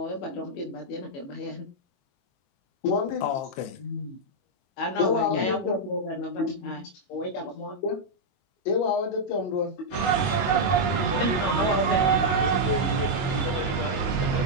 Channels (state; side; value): late; right; 21 ms